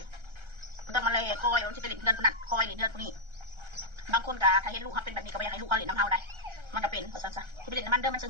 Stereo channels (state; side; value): late; left; 1.3 ms